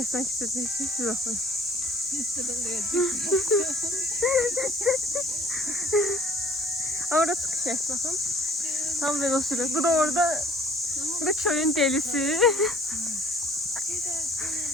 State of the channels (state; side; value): normal; both; correlation 0.54